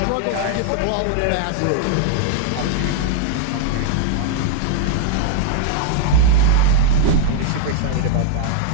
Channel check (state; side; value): different; both; correlation -0.01